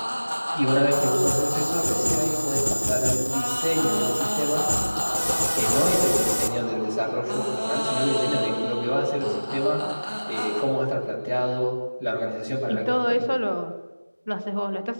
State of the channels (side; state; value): both; inverted; correlation -1.00